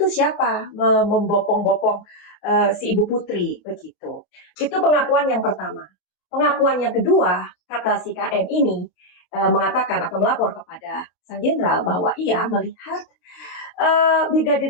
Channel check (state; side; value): late; right; 27 ms